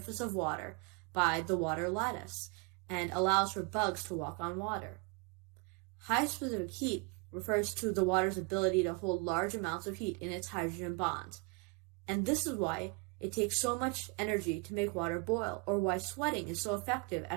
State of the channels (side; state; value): left; quieter; 30.2 dB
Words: of water by the water lattice and allows for bugs to walk on water. High specific heat refers to the water's ability to hold large amounts of heat in its hydrogen bonds, and this is why it takes so much energy to make water boil, or why sweating is so effective